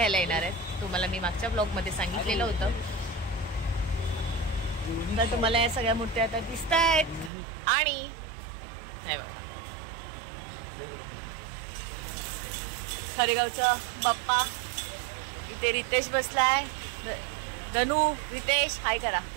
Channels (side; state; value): left; drops out; at 7.3 s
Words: येणार आहेत. तुम्हाला मी मागच्या ब्लॉगमध्ये सांगितलेलं होतं. तर तुम्हाला या सगळ्या मूर्त्या आता दिसत आहेत. आणि हे बघा खरेगावचा बाप्पा. इथे रितेश बसलाय. धनू रितेश हाय करा.